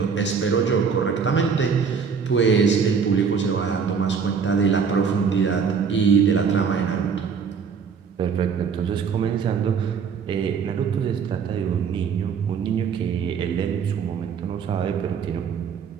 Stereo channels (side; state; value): left; quieter; 6.2 dB